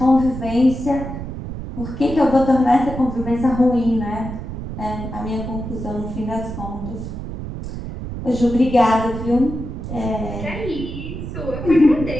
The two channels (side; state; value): right; noise; rumble, 8 dB below the sound